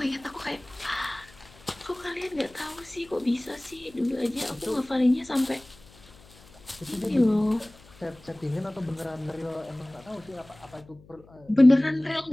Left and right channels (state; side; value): noise; left; hum, 24 dB below the sound